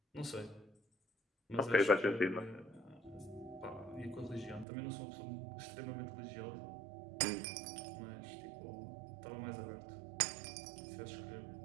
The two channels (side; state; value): left; drops out; at 4.7 s